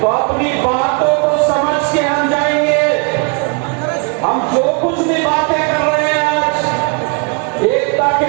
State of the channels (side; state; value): left; quieter; 35.7 dB